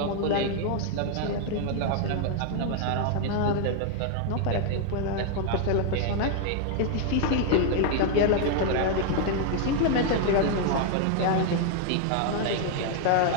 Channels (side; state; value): both; different; correlation 0.00